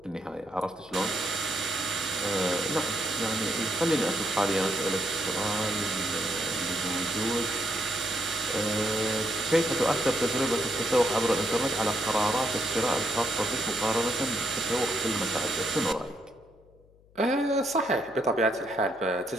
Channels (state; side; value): noise; left; hum, 29 dB below the sound